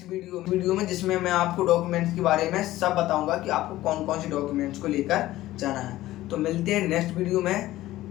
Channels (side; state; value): right; quieter; 15.8 dB